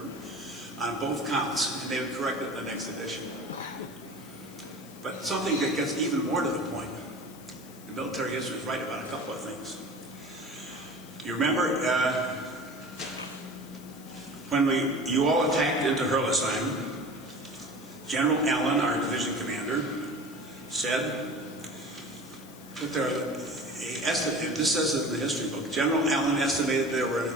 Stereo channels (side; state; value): left; noise; hiss, 20 dB below the sound